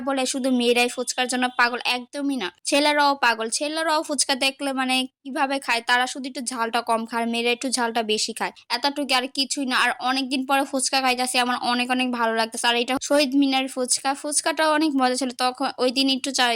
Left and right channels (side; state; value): both; identical; correlation 1.00